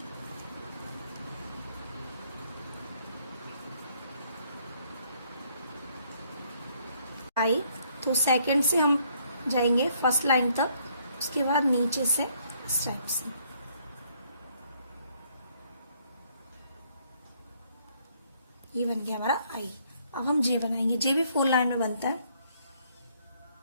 आई तो सेकंड से हम जाएंगे फर्स्ट लाइन तक, उसके बाद नीचे से इस टाइप से। ये बन गया हमारा आई। अब हम जे बनाएंगे। जे भी 4 लाइन में बनता है।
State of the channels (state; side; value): inverted; both; correlation -0.67